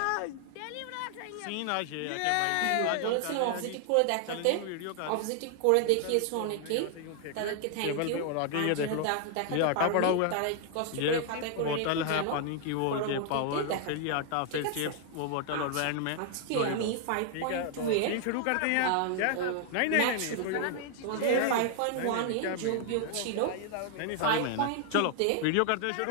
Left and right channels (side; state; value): both; different; correlation 0.00